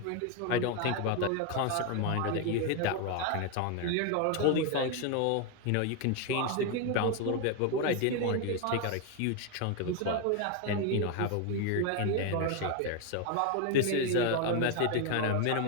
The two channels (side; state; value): both; different; correlation 0.01